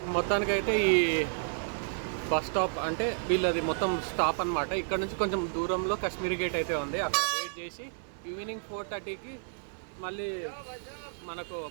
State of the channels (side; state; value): left; silent; digital silence